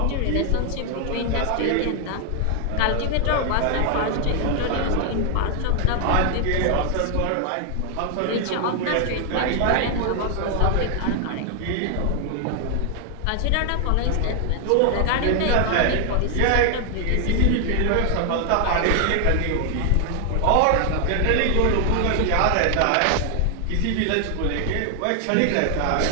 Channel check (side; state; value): both; different; correlation 0.00